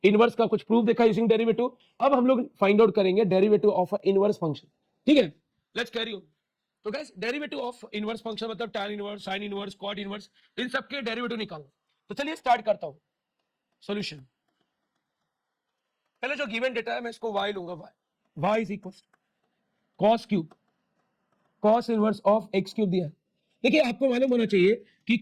इनवर्स का कुछ प्रूफ देखा यूजिंग डेरिवेटिव। अब हम लोग फाइंड आउट करेंगे डेरिवेटिव ऑफ इनवर्स फंक्शन। ठीक है, लेट्स कैरी ऑन। तो guys derivative of inverse function मतलब tan inverse, sin inverse, cot inverse, इन सबके डेरिवेटिव निकालो। तो चलिए स्टार्ट करता हूं सॉल्यूशन। पहले जो गिवन डेटा है मैं इसको y लूंगा, y is equal cos cube, cos inverse of x cube दिया है। देखिए आपको मालूम होना चाहिए कि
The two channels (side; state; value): both; identical; correlation 1.00